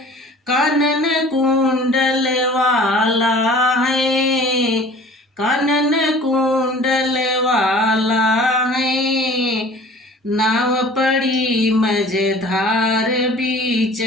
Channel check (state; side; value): normal; both; correlation 0.46